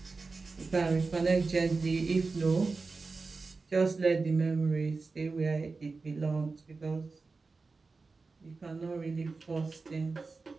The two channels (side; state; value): left; quieter; 4.1 dB